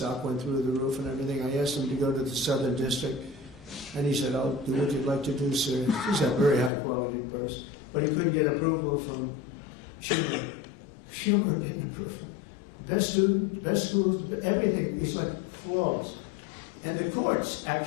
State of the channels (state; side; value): drops out; right; at 6.7 s